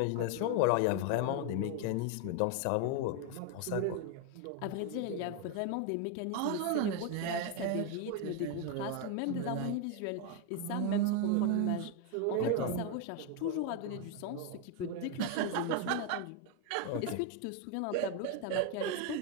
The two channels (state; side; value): different; both; correlation 0.01